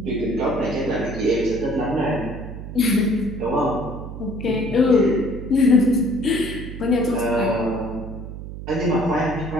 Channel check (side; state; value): right; noise; hum, 10 dB below the sound